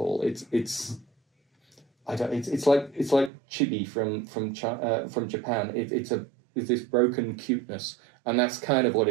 It's like chibi from Japan. It's this broken cuteness, and that's kind of what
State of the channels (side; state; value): left; drops out; at 3.3 s